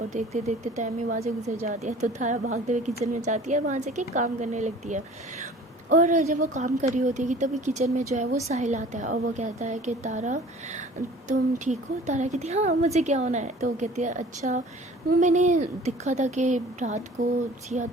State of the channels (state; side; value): normal; both; correlation 0.47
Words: देखते देखते टाइम ही वहाँ से गुजर जाती है। तो तारा भागते हुए किचन में जाती है, वहाँ से कि काम करने लगती है। और जब वो काम कर रही होती है कि तभी किचन में जो है वो साहिल आता है और वो कहता है कि तारा तुम ठीक हो। तारा कहती है हाँ मुझे क्या होना है। तो वो कहती है अच्छा वो मैंने देखा था कि रात को सिया